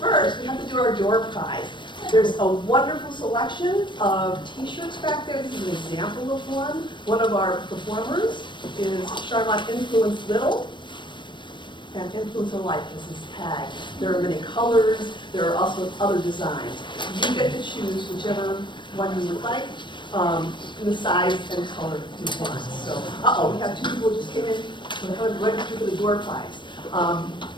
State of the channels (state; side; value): late; right; 0.22 ms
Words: we have to do our door prize. There's a wonderful selection of t-shirts back there. This is an example of one. One of our performers is Sharmont Influence Little and Influence of Life is his tag. There are many colors. There are also other designs. You get to choose whichever one you would like, in the size and color you want. So, we have 2 people who just came in to register for the door prize.